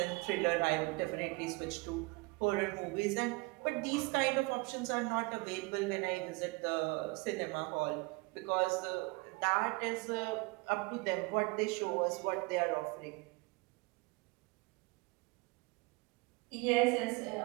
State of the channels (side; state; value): left; quieter; 26.2 dB